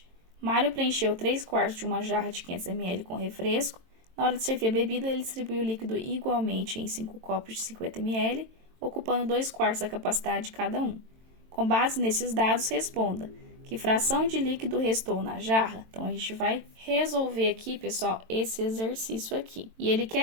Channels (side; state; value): left; late; 22 ms